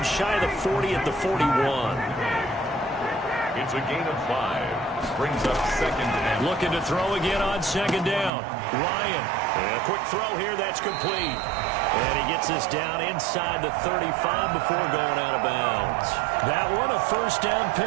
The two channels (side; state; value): left; drops out; at 8.3 s